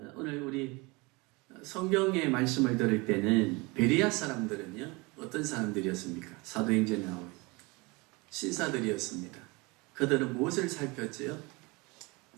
오늘 우리 성경의 말씀을 들을 때는 베레아 사람들은요, 어떤 사람들이었습니까? 사도행전에 나오는 신사들이었습니다. 그들은 무엇을 살폈지요?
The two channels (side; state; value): left; quieter; 25.8 dB